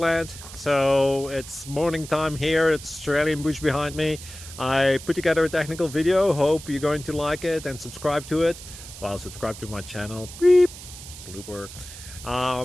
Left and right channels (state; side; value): noise; right; hiss, 14 dB below the sound